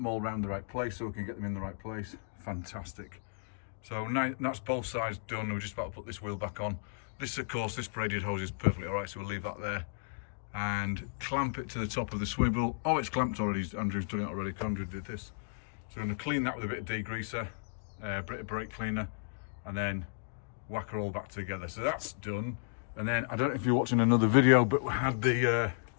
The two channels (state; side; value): silent; right; digital silence